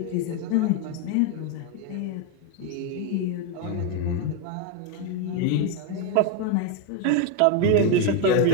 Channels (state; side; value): different; both; correlation 0.02